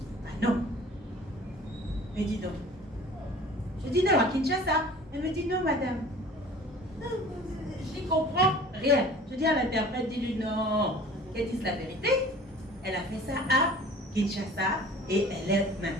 Ah non. Elle me dit non. Je dis non, à Kinshasa. Elle me dit non, madame. Non, je n'y comprends rien. Je dis à l'interprète, dis-lui non. Qu'elle dise la vérité. Elle a fait ça à Kinshasa et elle est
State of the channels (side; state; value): both; normal; correlation 0.46